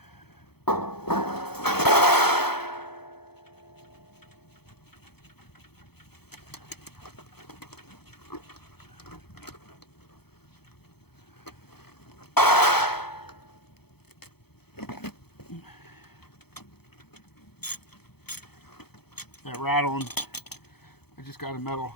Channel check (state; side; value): late; right; 0.97 ms